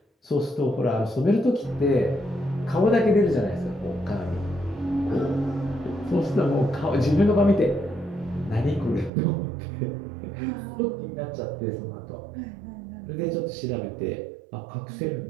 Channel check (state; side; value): drops out; left; at 9.1 s